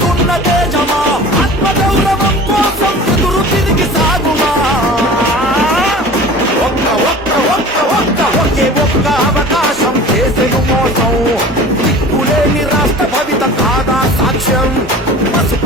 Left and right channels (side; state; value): both; normal; correlation 0.40